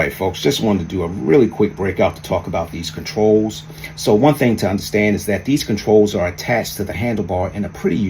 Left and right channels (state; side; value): identical; both; correlation 1.00